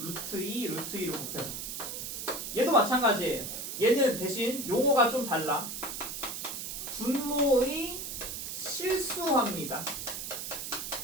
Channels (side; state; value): right; noise; hiss, 6 dB below the sound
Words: 2, 루트 2를 곱해서. 얘도 마찬가지예요. 얘는 대신 용어가 좀 달라. 분모의 실수화입니다.